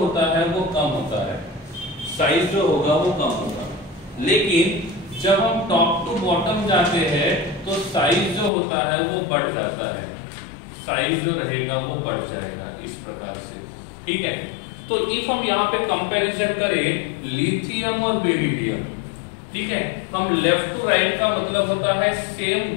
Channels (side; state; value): right; drops out; at 8.5 s